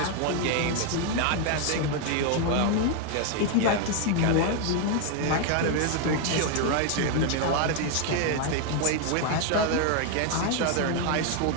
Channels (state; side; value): different; both; correlation 0.01